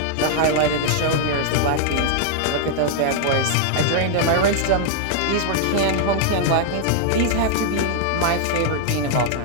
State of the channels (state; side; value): different; both; correlation 0.00